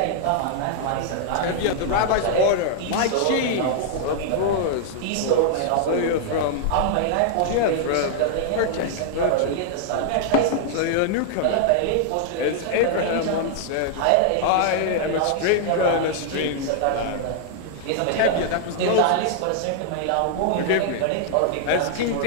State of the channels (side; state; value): both; different; correlation -0.01